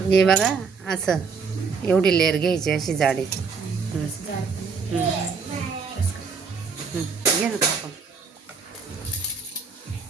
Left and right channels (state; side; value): quieter; left; 5.2 dB